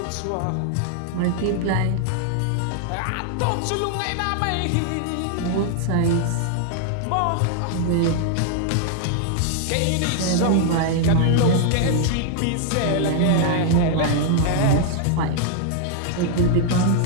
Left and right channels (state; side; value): different; both; correlation 0.00